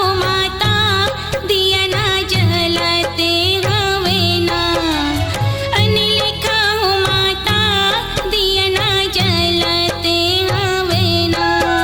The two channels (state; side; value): identical; both; correlation 1.00